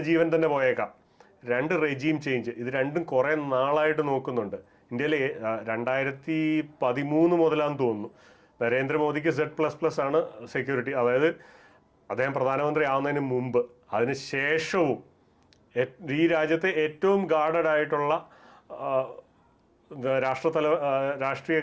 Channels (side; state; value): both; identical; correlation 1.00